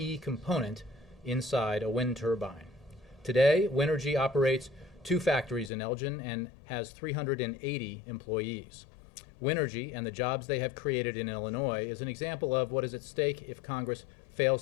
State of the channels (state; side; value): drops out; right; at 5.7 s